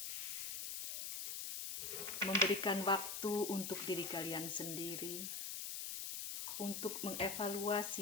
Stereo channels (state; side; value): noise; left; hiss, 4 dB below the sound